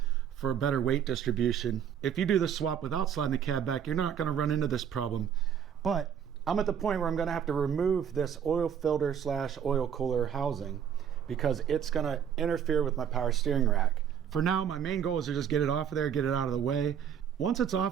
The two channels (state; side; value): quieter; left; 8.5 dB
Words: for a better weight distribution. If you do the swap without sliding the cab back, you're not going to run into this problem. But I'm at the point where I'm going to have to remove this oil filter / oil cooler housing because it's going to interfere with my power steering rack. For now, my main goal is to just get it off of there, get it out of the way. Once it's